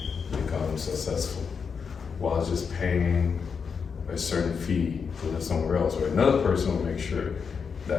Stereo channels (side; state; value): right; quieter; 6.0 dB